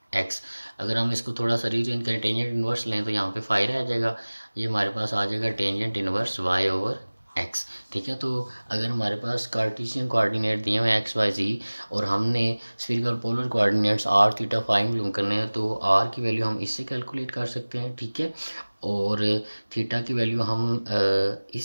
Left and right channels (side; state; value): both; inverted; correlation -1.00